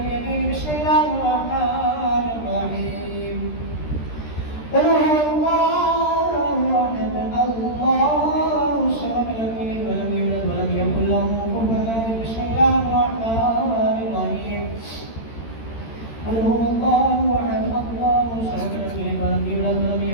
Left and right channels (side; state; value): right; late; 13 ms